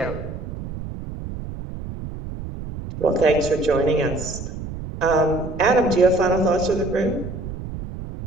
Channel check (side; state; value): right; noise; rumble, 9 dB below the sound